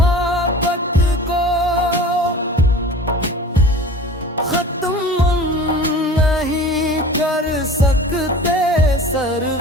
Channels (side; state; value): both; normal; correlation 0.39